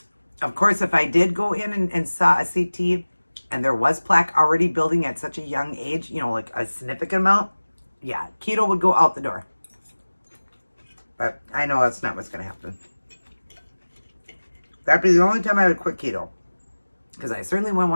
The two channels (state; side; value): inverted; both; correlation -1.00